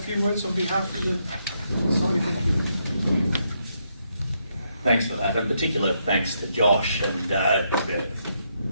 words on behalf of the society? Thanks for that. In particular, thanks to Josh. And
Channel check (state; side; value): inverted; both; correlation -0.78